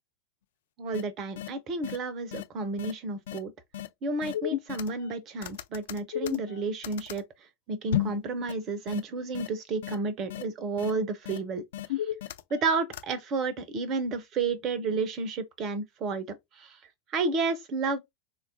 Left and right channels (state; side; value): normal; both; correlation 0.00